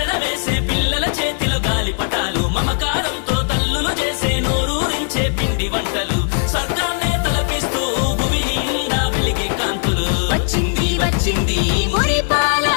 వేసే పిల్లల చేతిలో గాలిపటాలు మమకారంతో తల్లులు చేసే నోరూరించే పిండి వంటలు స్వర్గాన్నే తలపిస్తూ భూమి నిండా వెలిగే కాంతులు వచ్చింది వచ్చింది మురిపాల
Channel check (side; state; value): right; silent; 65 dB below the other